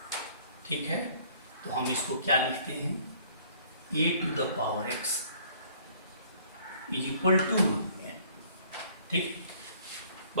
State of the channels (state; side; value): inverted; both; correlation -0.57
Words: ठीक है, तो हम इसको क्या लिखते हैं, a to the power x is equal to n, ठीक,